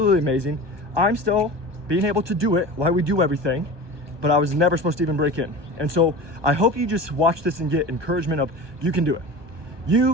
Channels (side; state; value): left; late; 1.2 ms